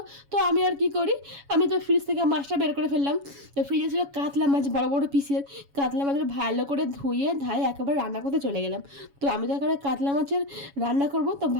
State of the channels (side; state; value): left; late; 7.2 ms